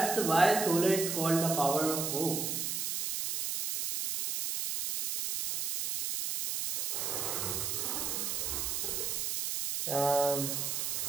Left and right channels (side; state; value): right; noise; hiss, 1 dB below the sound